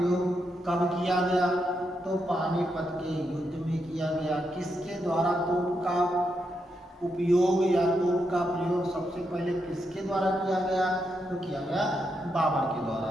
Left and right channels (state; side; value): normal; both; correlation 0.82